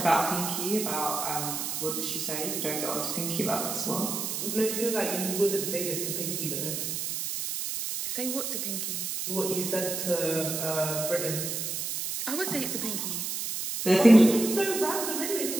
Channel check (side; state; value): right; noise; hiss, 3 dB below the sound